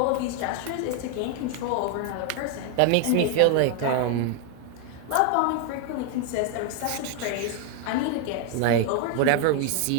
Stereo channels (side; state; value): both; different; correlation 0.01